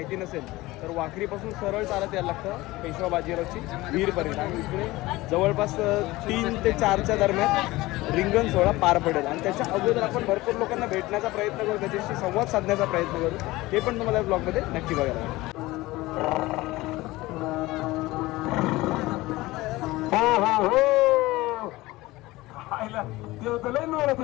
नसेल तर वाखरीपासून सरळ चालत यायला लागतं पेशवा बाजीरावची विहीरपर्यंत. आणि इकडे जवळपास 3 ते 4च्या दरम्यान रिंगण सोहळा पार पडेल. आणि त्याच्या अगोदर आपण भरपूर लोकांना भेटण्याचा प्रयत्न करू, त्याच्याशी संवाद साधण्याचा प्रयत्न करू. ते पण तुम्हाला या ब्लॉगमध्ये नक्की बघायला मिळेल.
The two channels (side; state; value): right; quieter; 19.4 dB